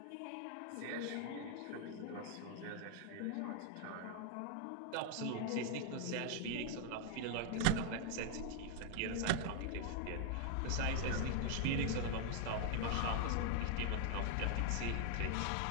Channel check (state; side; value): different; both; correlation 0.00